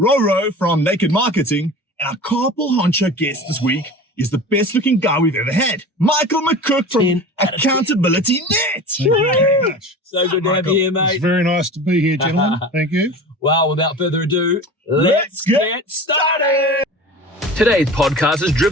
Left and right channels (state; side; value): normal; both; correlation 0.35